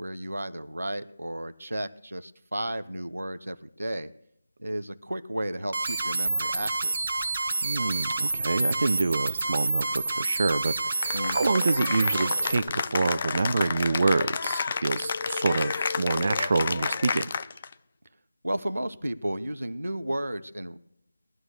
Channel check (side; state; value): both; inverted; correlation -0.91